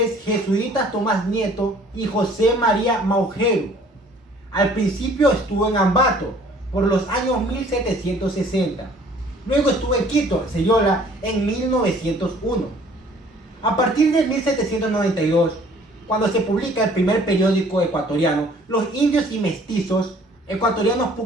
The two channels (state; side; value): normal; both; correlation 0.55